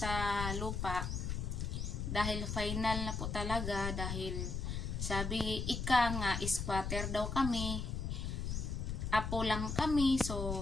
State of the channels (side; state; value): left; noise; rumble, 3 dB below the sound